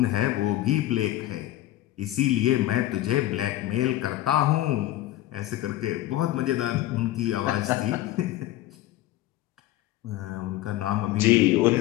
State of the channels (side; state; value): right; quieter; 15.1 dB